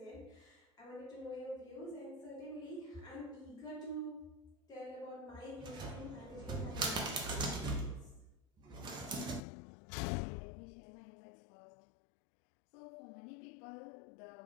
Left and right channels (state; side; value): drops out; right; at 9.4 s